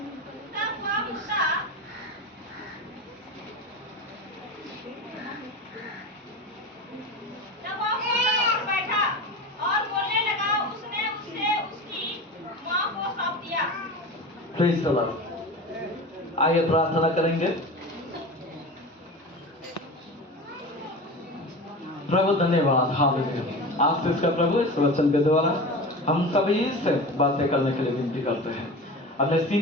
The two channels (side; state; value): both; normal; correlation 0.30